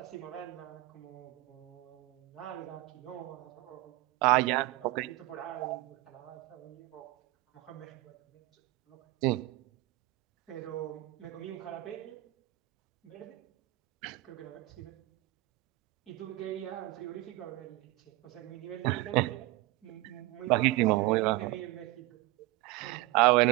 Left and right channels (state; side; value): quieter; left; 18.9 dB